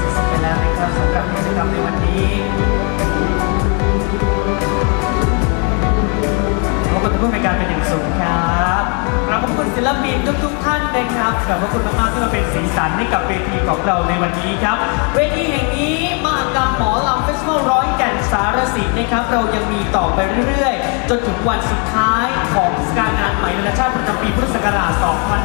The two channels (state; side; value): quieter; right; 36.4 dB